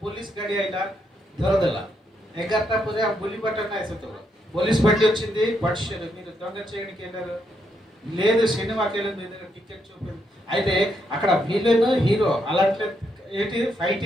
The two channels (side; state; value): both; normal; correlation 0.78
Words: ପୋଲିସ ଗାଡି ଆଇଲା ଧରଦେଲା। 11ଟା ପରେ ఆ బులిబాట నాయ సతవ పోలీస్ బండి వచ్చింది, పట్షేరు మీరు దొంగ చేయడానికి వెళ్ళారు, లేదు సినిమాకి వెళ్ళి మీ దగ్గర టికెట్ చూపింది। అయితే అక్కడ విలన్ హీరో అలాంటి ఏంటి